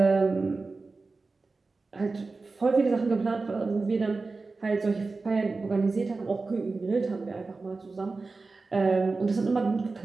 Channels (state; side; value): quieter; left; 3.8 dB